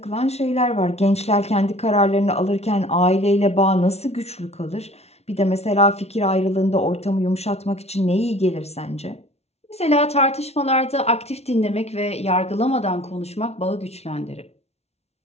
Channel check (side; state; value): right; late; 0.31 ms